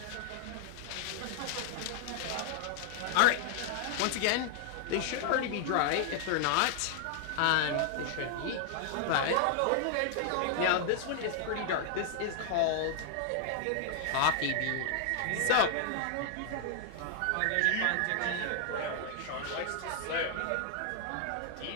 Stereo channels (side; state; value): both; different; correlation -0.01